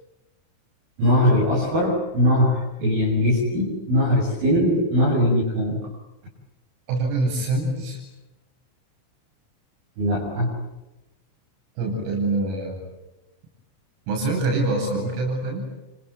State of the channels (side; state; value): left; late; 32 ms